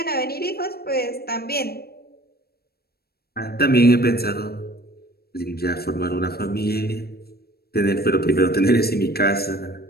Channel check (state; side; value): late; right; 0.46 ms